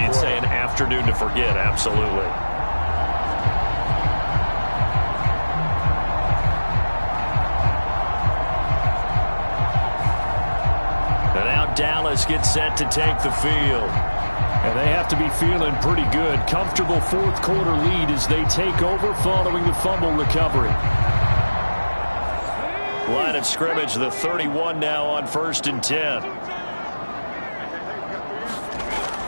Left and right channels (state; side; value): inverted; both; correlation -1.00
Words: You'd say an afternoon to forget. Absolutely. Dallas gets set to take the field. And they have to be feeling pretty good. Comfortable fourth quarter lead as they take over following the fumble recovery. Line of scrimmage, the 31 now on 1st and 10.